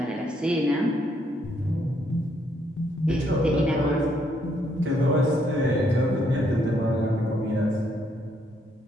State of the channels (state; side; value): normal; both; correlation 0.72